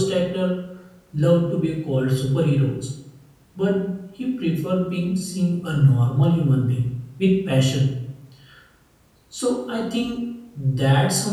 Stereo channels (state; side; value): identical; both; correlation 1.00